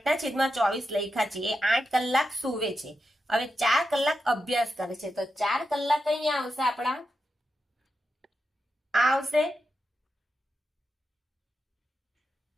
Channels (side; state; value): both; normal; correlation 0.88